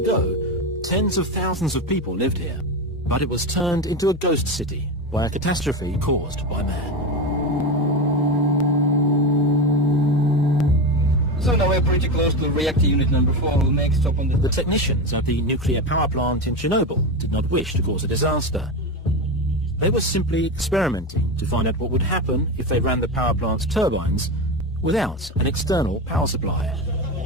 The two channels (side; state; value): both; normal; correlation 0.18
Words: ago, tens of thousands of people lived here, but it was turned into a ghost city by a catastrophe caused by man. So now we're pretty close to reactor unit number 4. We'll make stop on The technicians at the nuclear power plant in Chernobyl did not wish to cause a disaster. They were simply experimenting to find out what would happen if they ran the power plant's turbines without an external power supply.